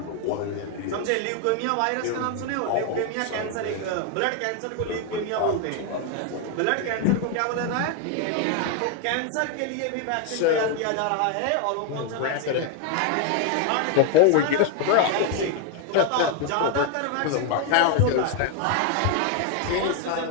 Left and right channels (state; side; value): different; both; correlation 0.01